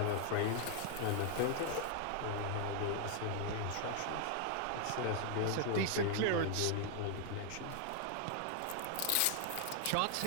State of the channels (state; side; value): different; both; correlation 0.00